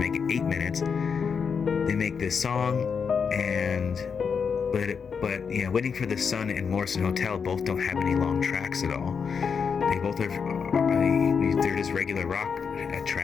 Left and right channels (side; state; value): right; quieter; 6.2 dB